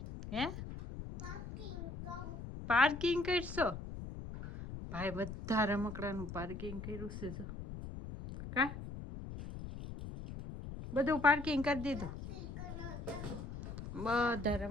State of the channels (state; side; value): noise; left; rumble, 9 dB below the sound